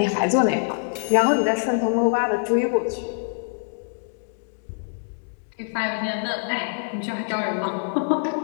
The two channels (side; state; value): right; silent; digital silence